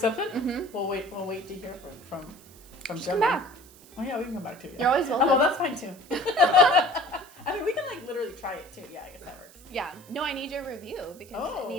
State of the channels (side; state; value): right; noise; hiss, 23 dB below the sound